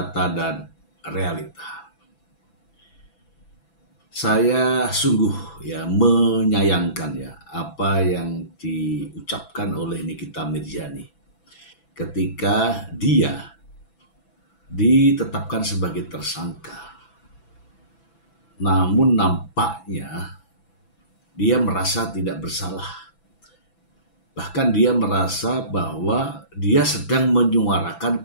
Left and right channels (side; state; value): right; late; 6.0 ms